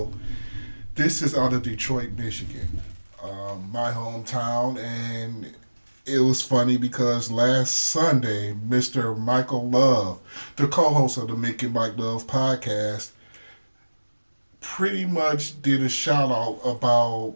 This is out of Detroit, Michigan, my hometown, and it was funny because last Sunday, Mr. Michael Love, the co-host of the Mickey and Mike Love podcast, pretty much did a shout out about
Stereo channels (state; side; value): inverted; both; correlation -1.00